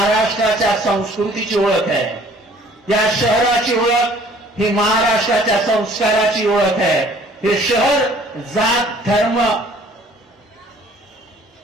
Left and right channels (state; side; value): normal; both; correlation 0.55